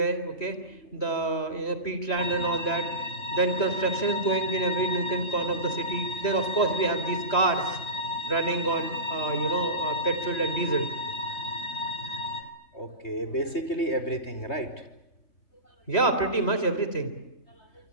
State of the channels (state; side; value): late; right; 3.1 ms